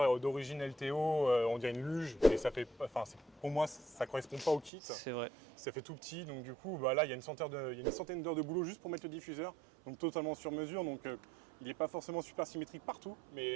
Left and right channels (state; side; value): drops out; left; at 4.7 s